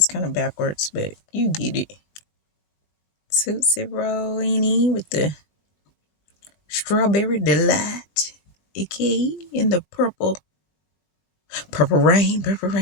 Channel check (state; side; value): late; right; 21 ms